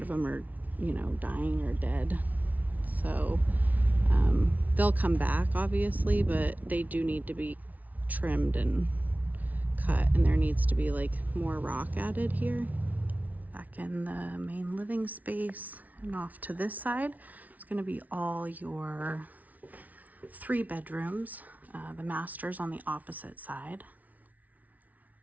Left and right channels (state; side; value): late; left; 0.074 ms